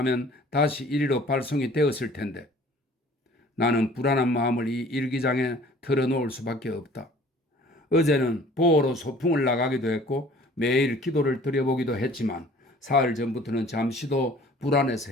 다시 이리로 발송이 되었을 텐데 나는 불안한 마음을 이 일기장에 털어놓을 수밖에 없다. 어제는 보호로 소풍을 나가기도 했고 매일 기도를 드려보기도 했지만 사흘 전부터는 잠시도 불안해서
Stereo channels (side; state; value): both; normal; correlation 0.51